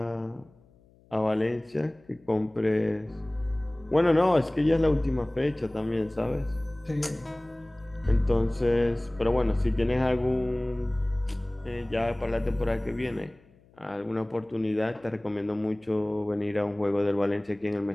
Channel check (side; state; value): left; noise; hum, 29 dB below the sound